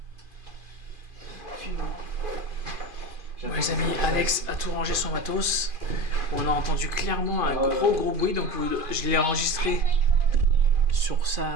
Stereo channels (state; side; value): late; left; 2.5 ms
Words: Ouais, les amis, Alex a tout rangé son matos. On a entendu clairement un gros bruit, donc je l'ai enregistré sur